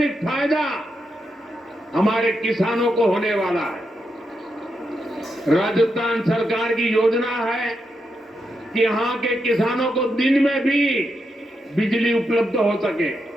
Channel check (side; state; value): both; normal; correlation 0.84